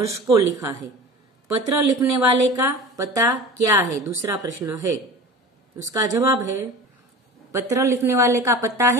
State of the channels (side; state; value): both; normal; correlation 0.35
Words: को लिखा है। पत्र लिखने वाले का पता क्या है? दूसरा प्रश्न है, उसका जवाब है, पत्र लिखने वाले का पता